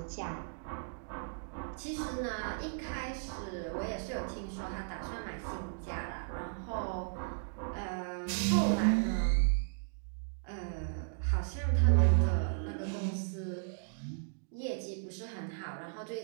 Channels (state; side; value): silent; left; digital silence